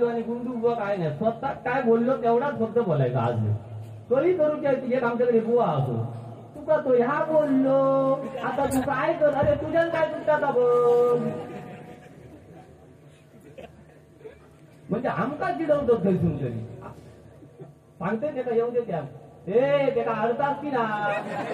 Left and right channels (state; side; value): identical; both; correlation 1.00